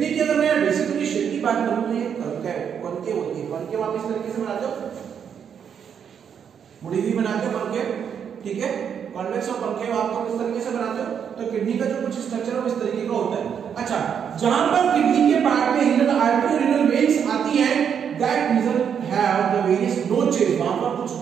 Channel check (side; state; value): left; quieter; 7.8 dB